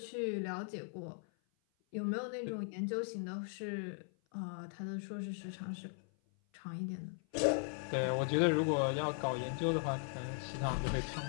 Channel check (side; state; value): right; silent; 52 dB below the other